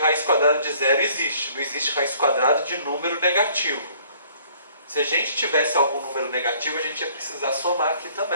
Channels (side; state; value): both; inverted; correlation -0.58